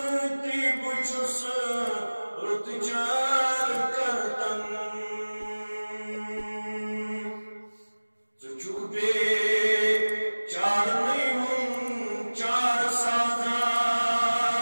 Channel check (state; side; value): inverted; both; correlation -1.00